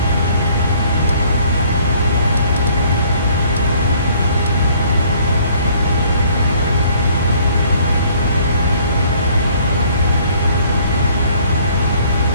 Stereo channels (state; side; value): inverted; both; correlation -0.59